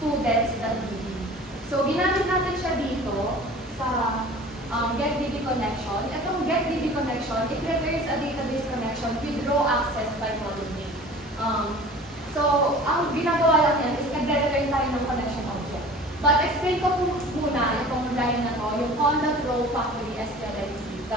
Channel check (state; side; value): normal; both; correlation 0.43